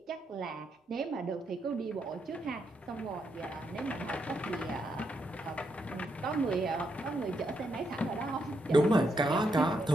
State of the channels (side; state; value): both; normal; correlation 0.80